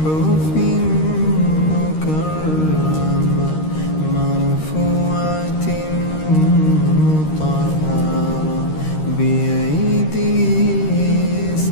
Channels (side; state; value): right; late; 13 ms